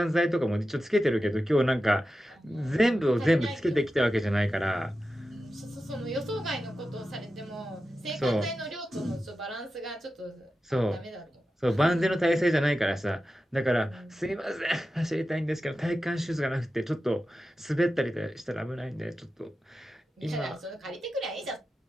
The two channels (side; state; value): both; normal; correlation 0.92